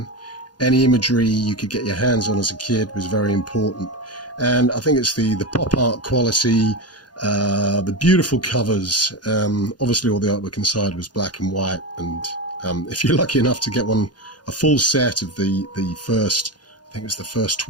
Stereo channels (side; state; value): right; late; 0.69 ms